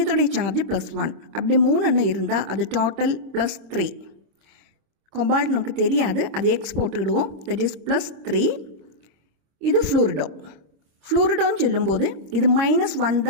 சார்ஜ் +1. அப்படி 3 இருந்தால் அது டோட்டல் +3. கொபால்ட் நமக்கு தெரியாது, அது எக்ஸ் போட்டுக்கிடுவோம். That is +3. இது ஃப்ளூரிடோன்னு சொல்லும்போது இது -1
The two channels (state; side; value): late; left; 26 ms